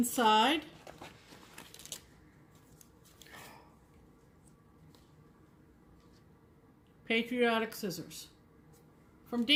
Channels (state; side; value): identical; both; correlation 1.00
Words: patriotic scissors from